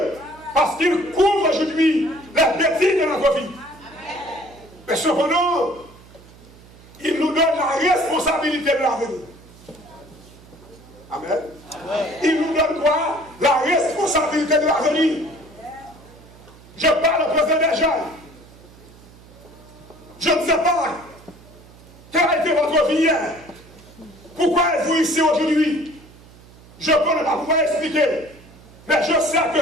parce qu'il couvre aujourd'hui les bêtises de notre vie. Mais cependant, il nous donne la responsabilité de l'avenir. Amen. Il nous donne quoi? La responsabilité de l'avenir. Je parle au président des jeunes. Je ne sais pas quelle a été votre vie hier. Pourquoi êtes-vous ici aujourd'hui? Je peux ne pas pouvoir expliquer. Mais je sais que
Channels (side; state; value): right; noise; hum, 23 dB below the sound